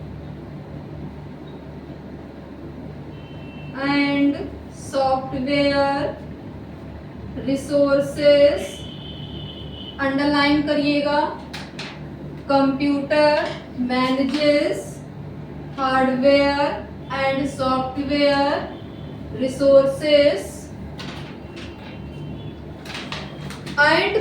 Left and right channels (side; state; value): both; identical; correlation 1.00